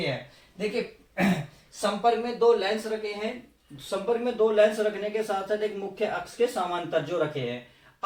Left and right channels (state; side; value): identical; both; correlation 1.00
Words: हैं। देखिए संपर्क में दो लेंस रखे हैं। संपर्क में दो लेंस रखने के साथ साथ एक मुख्य अक्ष के समांतर जो रखे हैं।